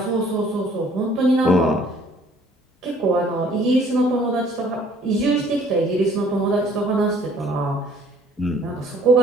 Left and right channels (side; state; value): both; normal; correlation 0.57